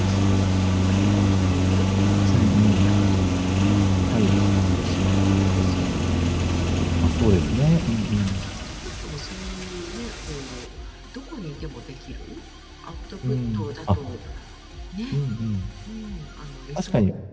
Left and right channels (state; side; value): identical; both; correlation 1.00